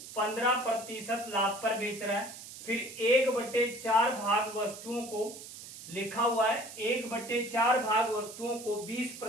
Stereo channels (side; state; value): right; noise; hiss, 14 dB below the sound